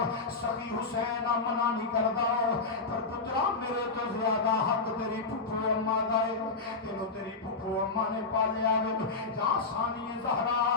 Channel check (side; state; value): right; quieter; 4.0 dB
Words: سخی حسین منع نہیں کردا پر پترا میرے تو زیادہ حق تیری پھپھو اماں دا ہے تینوں تیری پھپھو اماں نے پالیا ہے جا ثانی زہرا